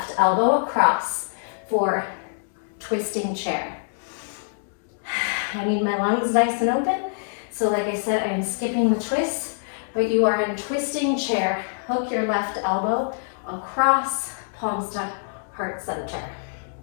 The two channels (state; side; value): silent; right; digital silence